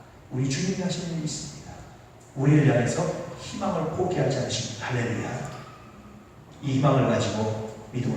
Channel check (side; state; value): both; identical; correlation 1.00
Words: 우리 주님이 하시는 일이 있습니다. 우리를 향해서 희망을 포기하지 않으십니다. 할렐루야. 이 희망을 가지고